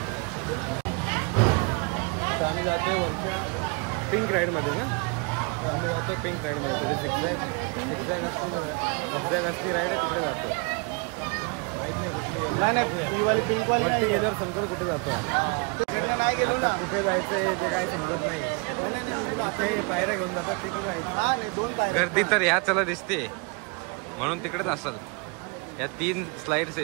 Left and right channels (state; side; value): quieter; left; 32.7 dB